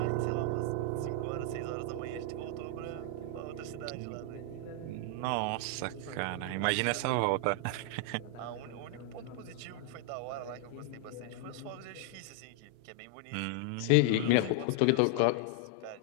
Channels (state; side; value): different; both; correlation 0.00